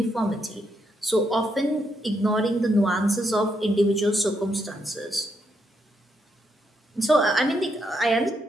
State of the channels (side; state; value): both; normal; correlation 0.78